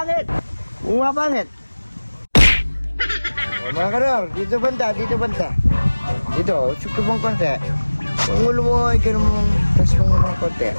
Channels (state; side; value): inverted; both; correlation -1.00